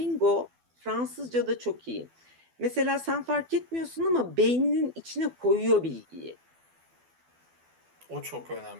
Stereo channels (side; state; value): left; late; 12 ms